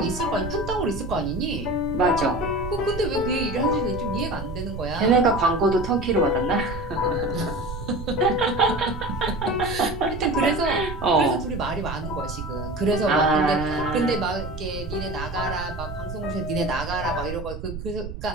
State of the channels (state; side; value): noise; right; rumble, 9 dB below the sound